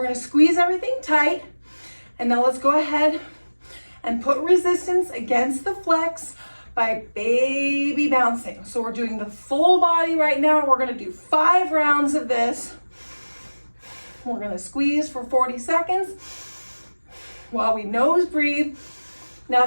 gonna squeeze everything tight. And now let's go ahead and put resistance against the flex by baby bouncing. So we're doing the full body right now. We're gonna do 5 rounds of this. We're gonna squeeze for 40 seconds while we nose breathe. Now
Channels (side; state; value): both; inverted; correlation -1.00